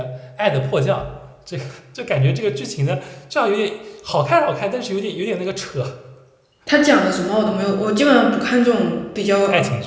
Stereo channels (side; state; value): both; identical; correlation 1.00